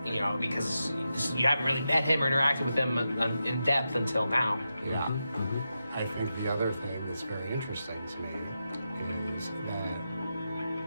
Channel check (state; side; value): inverted; both; correlation -0.88